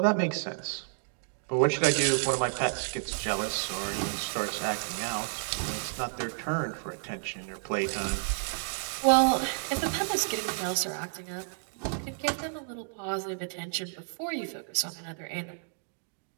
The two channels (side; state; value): left; silent; digital silence